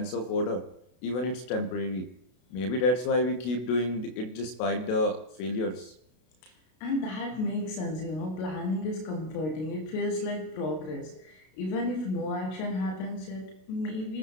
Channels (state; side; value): late; right; 32 ms